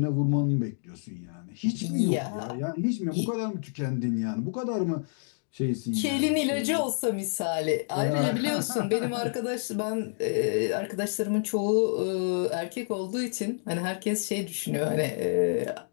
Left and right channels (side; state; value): right; silent; digital silence